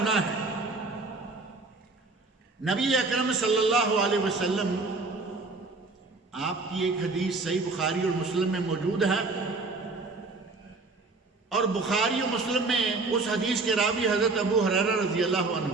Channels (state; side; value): quieter; left; 3.7 dB